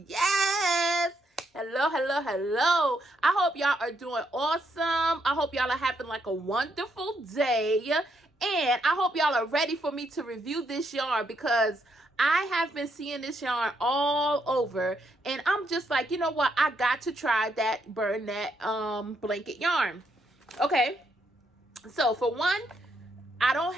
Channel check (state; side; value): normal; both; correlation 0.77